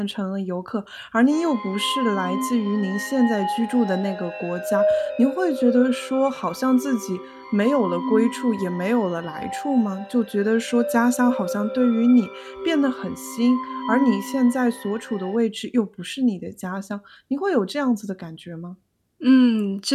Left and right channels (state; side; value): identical; both; correlation 1.00